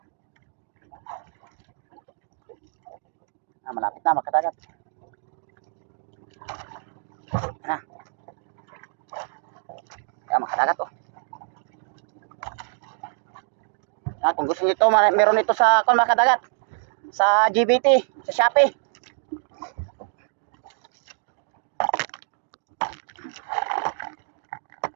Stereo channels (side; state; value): left; silent; 61 dB below the other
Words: Malapit na makadagat. Na. Kaya makadagat oh. Kung gusto niyo ito, meron ito sa kung makadagat. Sa GBT, sa Shopee.